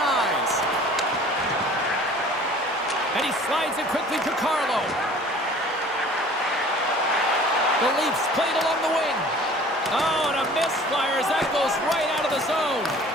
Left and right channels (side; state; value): both; normal; correlation 0.48